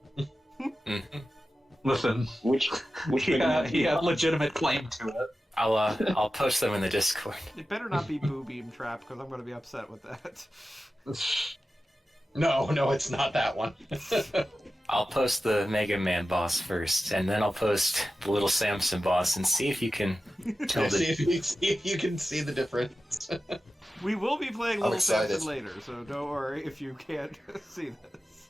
Mm-hmm. Which he had legitimate claim to it. I'll post them in the Discord. It better not be Boo Beam Trap, because I'm going to be upset with that. No, it's not that one. I'll post the Mega Man boss first, and then I'll post the Little Samson boss, and see if you can tell see the... if you can see the difference. We will be playing I'm Little excited. Samson later, so don't worry if you can't see this.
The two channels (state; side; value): normal; both; correlation 0.94